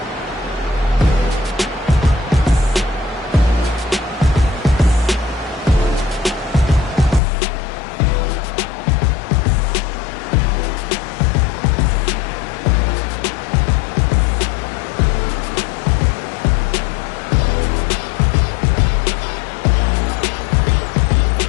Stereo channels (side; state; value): right; drops out; at 7.2 s